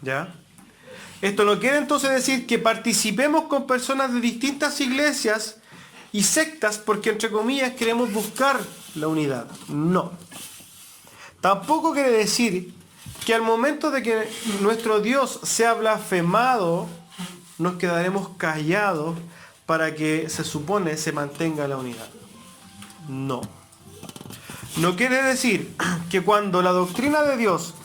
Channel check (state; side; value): identical; both; correlation 1.00